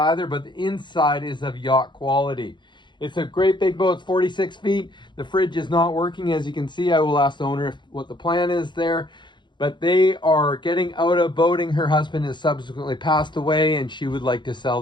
but the inside is of yacht quality. It's a great big boat. It's 46 feet. The fridge is not working, as you can see. I will ask the owner what the plan is there, but they are getting out of boating. Her husband has subsequently passed away, and she would like to sell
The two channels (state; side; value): late; right; 0.22 ms